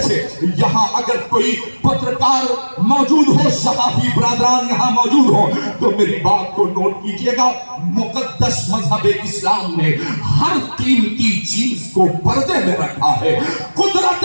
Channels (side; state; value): both; inverted; correlation -1.00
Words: سے یہاں اگر کوئی پترکار موجود ہو صحافی برادران یہاں موجود ہو تو میری بات کو نوٹ کیجئے گا. مقدس مذہب اسلام نے ہر قیمتی چیز کو پردے میں رکھا ہے. قدرت